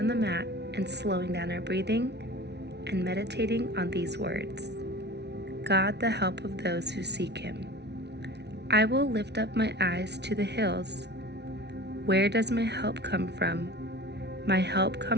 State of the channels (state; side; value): late; left; 0.50 ms